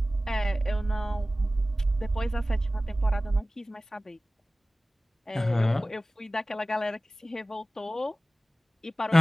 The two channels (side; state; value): both; normal; correlation 0.96